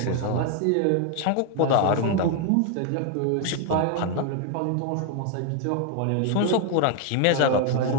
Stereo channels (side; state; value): both; different; correlation 0.00